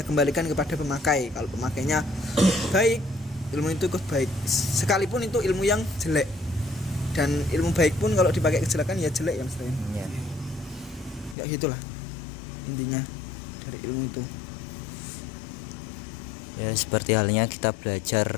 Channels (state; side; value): drops out; right; at 11.4 s